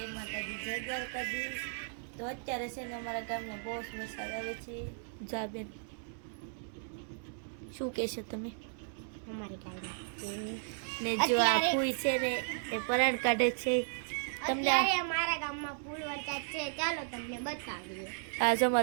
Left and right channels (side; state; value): left; silent; 54 dB below the other